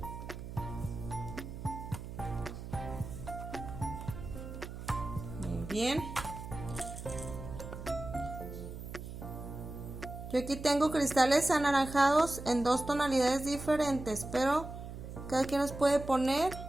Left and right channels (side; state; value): right; noise; hum, 10 dB below the sound